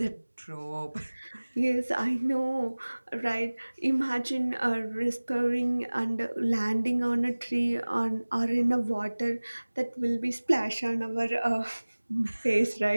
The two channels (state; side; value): inverted; both; correlation -1.00